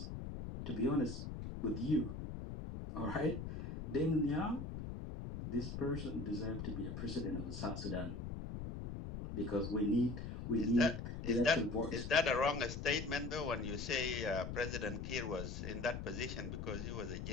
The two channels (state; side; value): noise; left; rumble, 6 dB below the sound